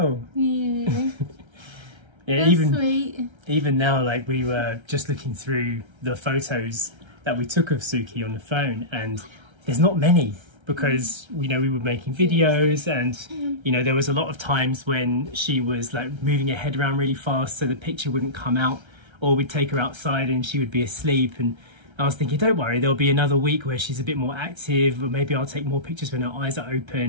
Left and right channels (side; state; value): left; late; 1.3 ms